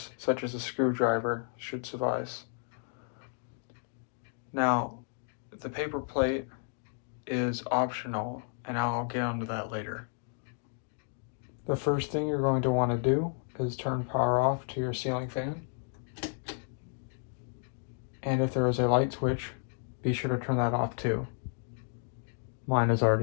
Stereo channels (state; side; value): silent; right; 56 dB below the other